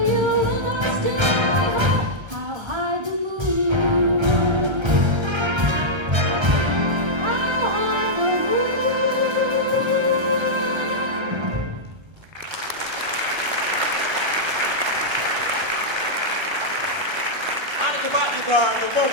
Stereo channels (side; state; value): left; late; 1.2 ms